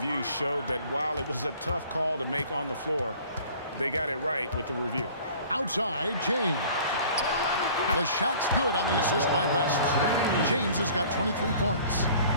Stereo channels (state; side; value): inverted; both; correlation -0.49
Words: showed that while it was a tough call to make on the floor, they got it right with the review. Outside, James. The shot's good on the assist by West. James has got 23 points.